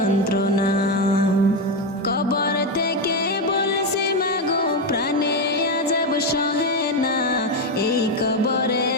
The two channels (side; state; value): both; normal; correlation 0.08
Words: কবর থেকে বলছি মাগো প্রাণে আযাব সহে না, এই কবরে